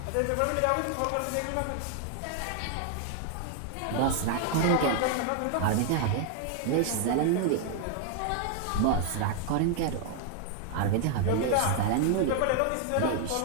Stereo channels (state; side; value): different; both; correlation 0.00